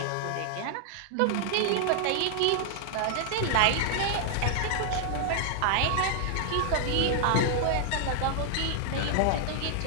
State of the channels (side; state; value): both; different; correlation 0.00